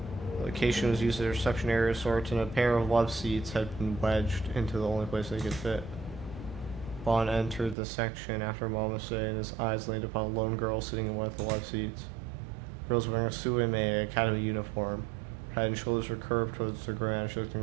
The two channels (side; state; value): left; drops out; at 7.8 s